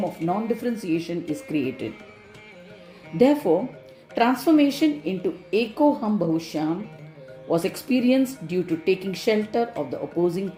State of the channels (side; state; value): both; identical; correlation 1.00